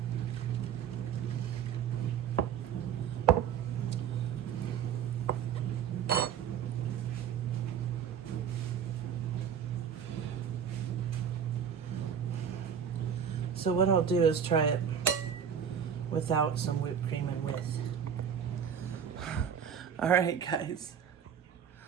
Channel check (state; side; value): quieter; left; 7.9 dB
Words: So what I'll do is try it without some whipped cream and with. All right, guys.